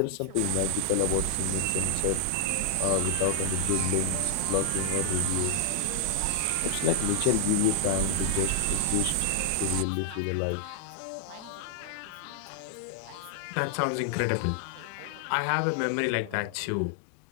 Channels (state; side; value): different; both; correlation 0.00